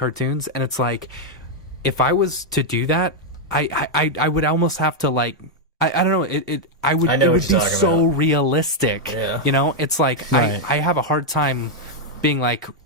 and it's like, if I was to do that, I would almost have to like I don't know it would be so realistic. It's like right. I have a hard time being like,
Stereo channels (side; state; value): both; normal; correlation -0.01